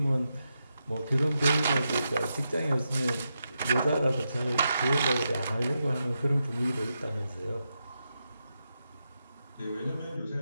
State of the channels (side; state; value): both; inverted; correlation -0.86